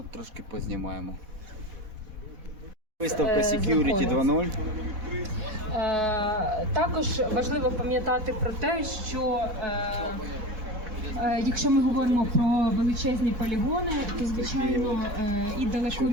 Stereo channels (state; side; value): late; left; 4.1 ms